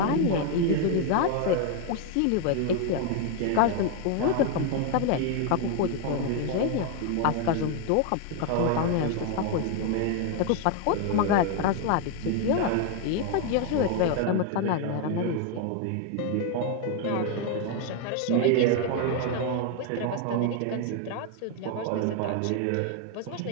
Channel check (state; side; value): different; both; correlation 0.01